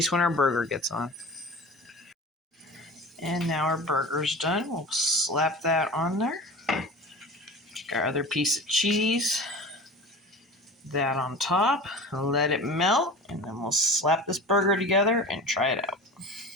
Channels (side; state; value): both; normal; correlation 0.35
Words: when our burger gets on. And now our burger's done. We'll slap that on there. Take our other piece of cheese, that on top, let it melt, and then we'll slap this burger together and try it out.